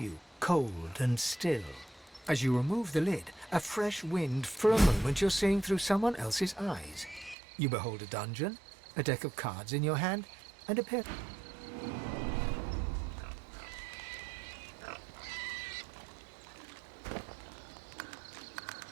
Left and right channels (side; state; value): left; drops out; at 7.4 s